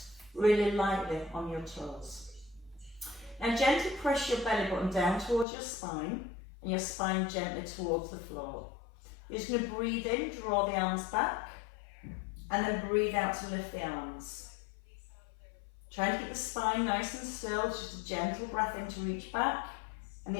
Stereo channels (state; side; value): drops out; right; at 5.5 s